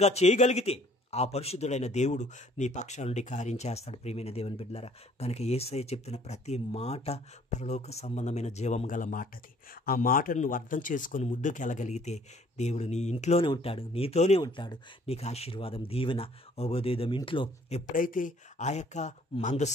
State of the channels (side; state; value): both; normal; correlation 0.58